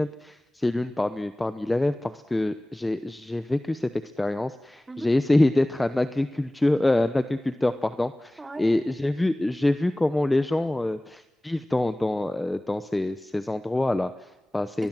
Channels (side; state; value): both; normal; correlation 0.98